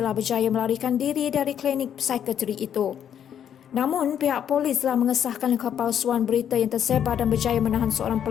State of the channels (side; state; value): right; quieter; 9.2 dB